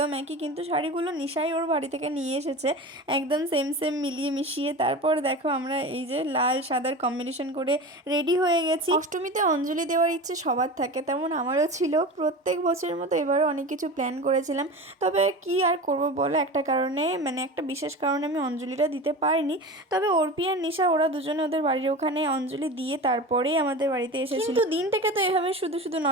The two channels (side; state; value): both; normal; correlation 0.30